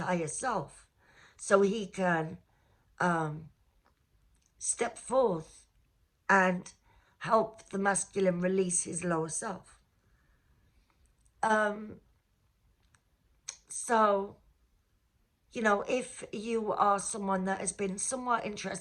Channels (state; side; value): identical; both; correlation 1.00